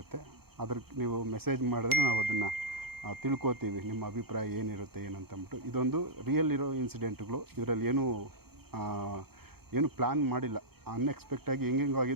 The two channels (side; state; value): left; late; 0.96 ms